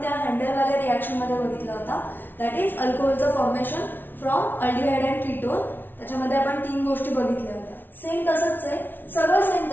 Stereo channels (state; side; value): late; right; 0.094 ms